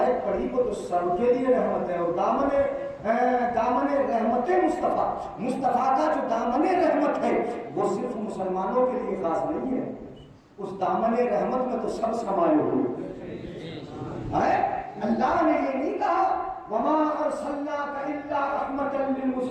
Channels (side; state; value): both; identical; correlation 1.00